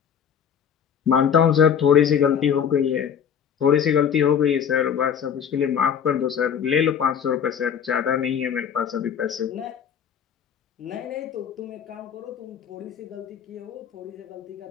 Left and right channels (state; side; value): quieter; right; 8.0 dB